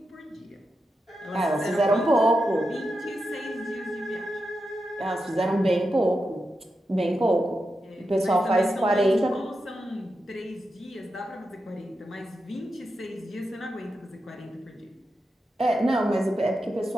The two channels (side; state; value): both; normal; correlation 0.88